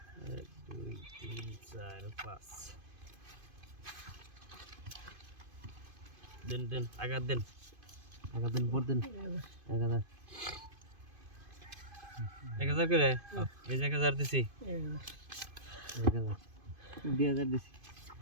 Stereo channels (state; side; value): late; left; 2.5 ms